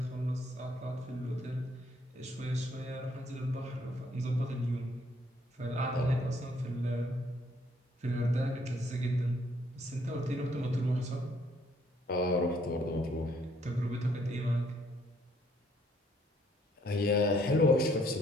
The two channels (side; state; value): both; normal; correlation 0.66